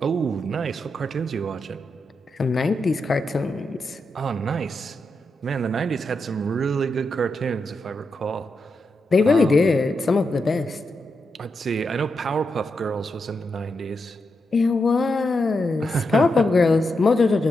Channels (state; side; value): normal; both; correlation 0.85